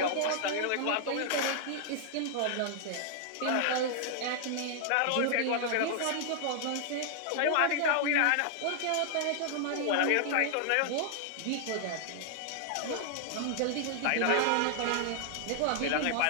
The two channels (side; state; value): both; different; correlation -0.01